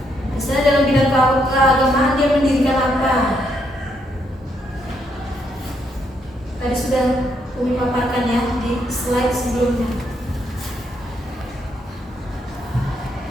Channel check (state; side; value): normal; both; correlation 0.75